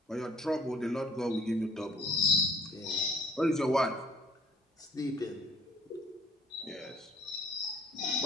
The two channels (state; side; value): normal; both; correlation 0.55